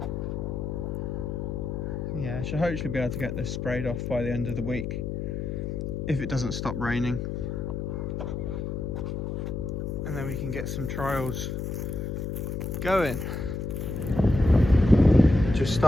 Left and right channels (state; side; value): noise; left; hum, 3 dB below the sound